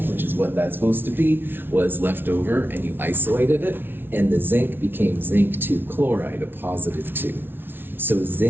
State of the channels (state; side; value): late; left; 0.10 ms